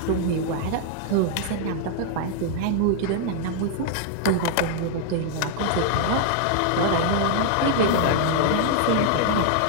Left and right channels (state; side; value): different; both; correlation -0.01